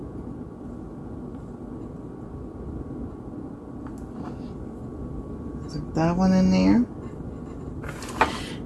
That one in there.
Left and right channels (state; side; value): identical; both; correlation 1.00